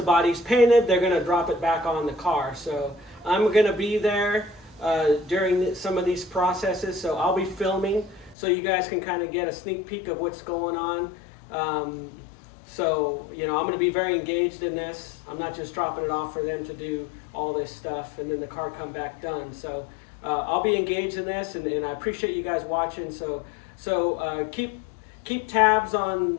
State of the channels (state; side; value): drops out; right; at 8.3 s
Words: body's painted, they're gonna drop it back on the car. So I'm gonna be there during some of these processes, so I'll be filming so you guys can kind of get a sneak peek of what's going on. So, you know, I'm going to be very engaged in this. I'm not just dropping it off for them to do all this stuff and then the car come back done. So I'll be engaged in this, and I appreciate you guys watching. So keep tabs